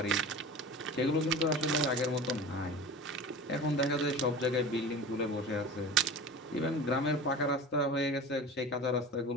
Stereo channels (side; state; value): both; normal; correlation 0.35